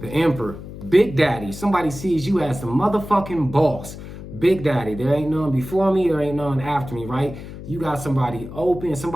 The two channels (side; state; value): left; noise; hum, 12 dB below the sound